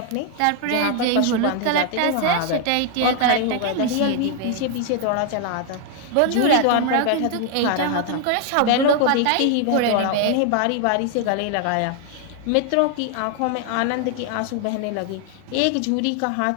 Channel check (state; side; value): different; both; correlation 0.00